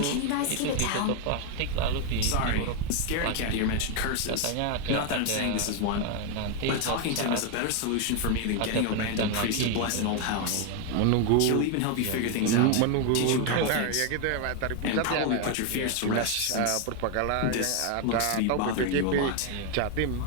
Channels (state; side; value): different; both; correlation 0.01